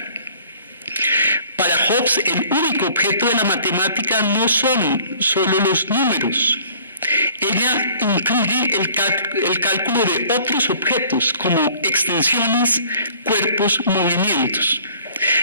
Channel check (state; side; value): inverted; both; correlation -0.53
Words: Para Hobbes, el único objeto de la matemática no son solo los números. Ella incluye el cálculo de otros objetos, como extensiones, cuerpos, movimientos.